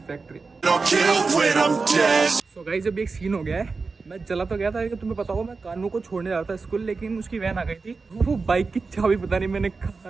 फैक्ट्री। सो गाइस अब एक सीन हो गया है, मैं चला तो गया था, लेकिन तुम्हें पता हो मैं कानू को छोड़ने जा रहा था स्कूल, लेकिन उसकी वैन आ गई थी। वो बाइक की चाबी पता नहीं मैंने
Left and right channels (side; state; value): left; quieter; 4.3 dB